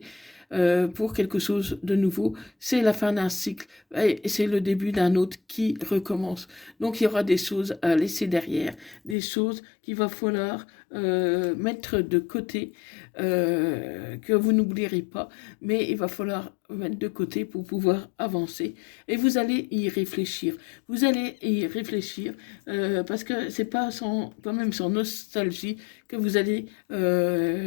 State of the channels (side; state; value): right; drops out; at 9.2 s